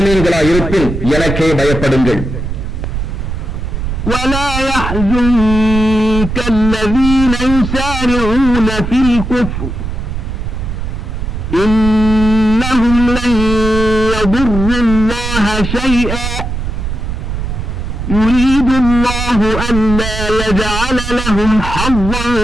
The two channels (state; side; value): noise; right; rumble, 4 dB below the sound